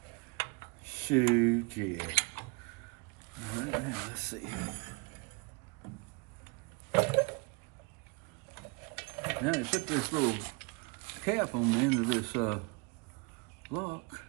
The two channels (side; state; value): left; quieter; 30.0 dB